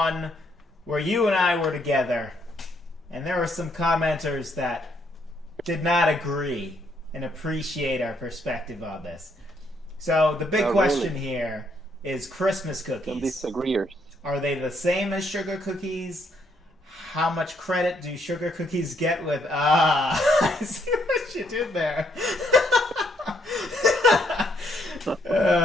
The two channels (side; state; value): both; normal; correlation 0.72